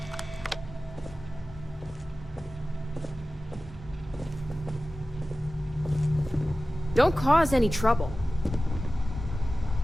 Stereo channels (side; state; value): both; normal; correlation 0.96